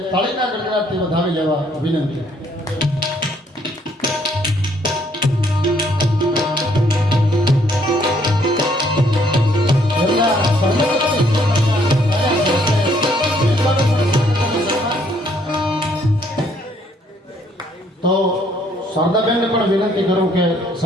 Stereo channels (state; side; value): normal; both; correlation 0.67